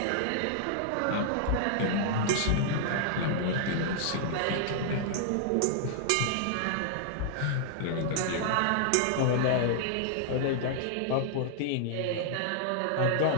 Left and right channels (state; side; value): different; both; correlation -0.01